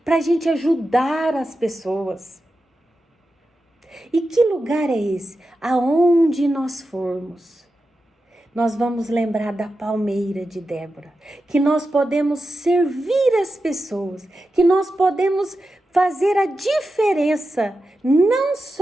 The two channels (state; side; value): normal; both; correlation 0.91